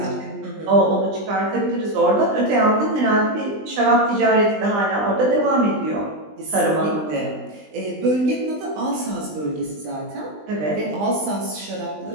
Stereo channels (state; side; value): late; left; 20 ms